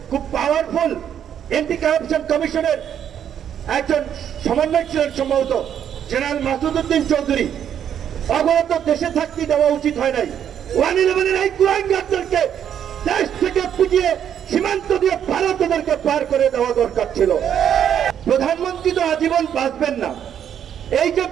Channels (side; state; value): left; quieter; 9.2 dB